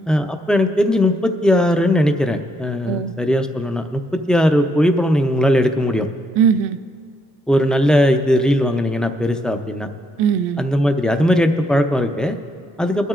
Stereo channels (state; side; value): normal; both; correlation 0.75